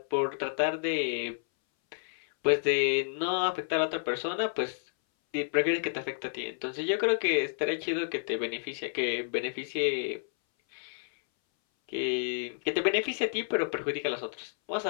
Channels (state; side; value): silent; right; 58 dB below the other